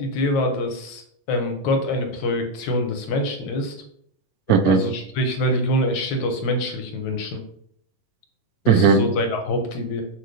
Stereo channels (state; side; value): late; right; 10 ms